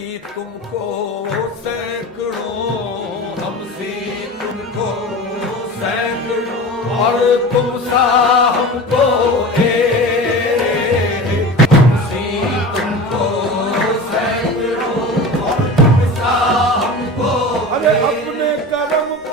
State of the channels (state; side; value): normal; both; correlation 0.32